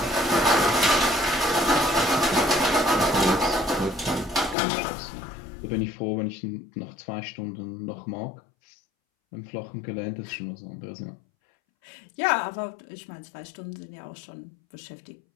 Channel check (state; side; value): drops out; right; at 4.5 s